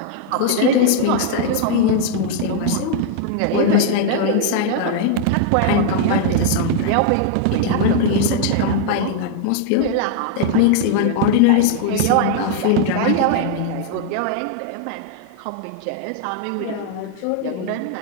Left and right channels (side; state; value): both; different; correlation 0.00